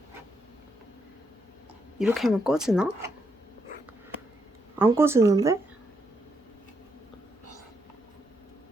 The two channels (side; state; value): both; normal; correlation 0.79